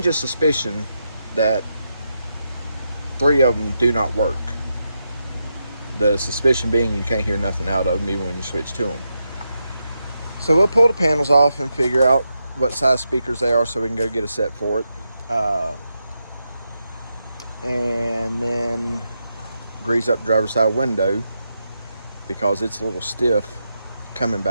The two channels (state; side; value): inverted; both; correlation -0.85